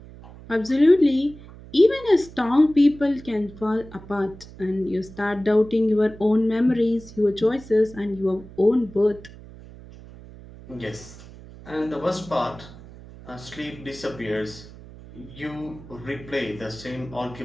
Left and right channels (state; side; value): noise; right; hum, 18 dB below the sound